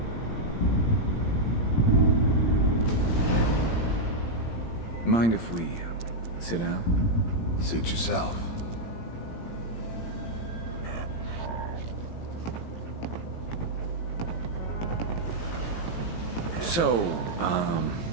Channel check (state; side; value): late; right; 17 ms